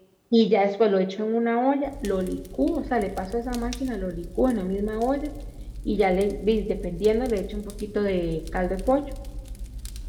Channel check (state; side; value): identical; both; correlation 1.00